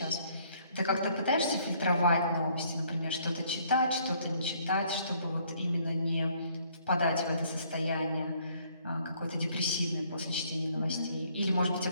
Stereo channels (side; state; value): both; inverted; correlation -0.64